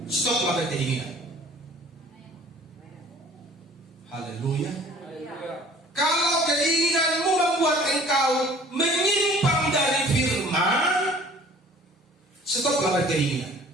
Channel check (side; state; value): both; normal; correlation 0.51